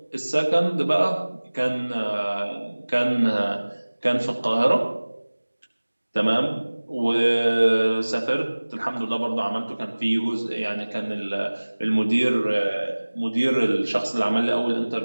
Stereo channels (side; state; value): both; inverted; correlation -1.00